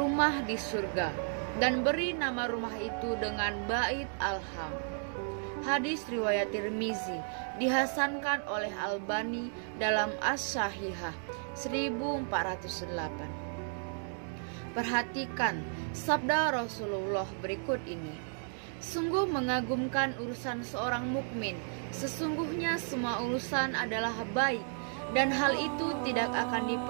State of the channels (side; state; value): left; silent; 55 dB below the other